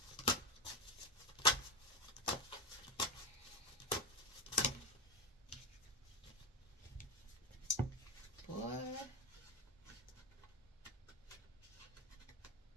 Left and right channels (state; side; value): normal; both; correlation 0.15